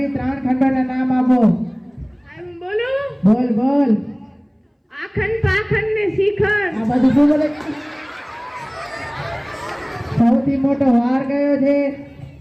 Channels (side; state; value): both; identical; correlation 1.00